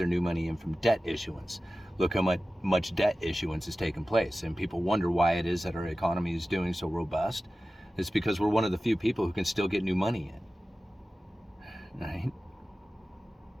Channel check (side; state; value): both; normal; correlation 0.95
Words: new money in from debt issuance. Look how much debt issuance has taken place. And people wonder why it is that our economy is doing so robust. It's because we're one of the few people who can still get new money in. Right?